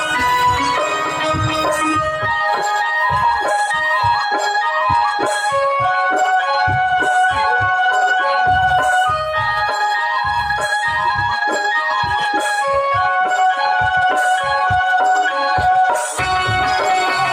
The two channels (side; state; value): both; identical; correlation 1.00